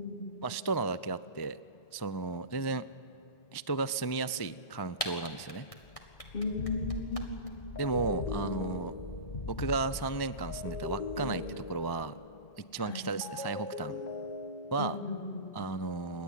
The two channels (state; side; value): late; right; 1.1 ms